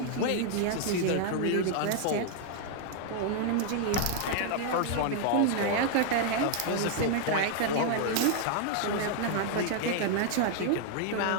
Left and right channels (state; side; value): different; both; correlation 0.00